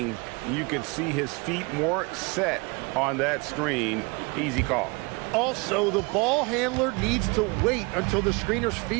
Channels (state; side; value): quieter; left; 28.3 dB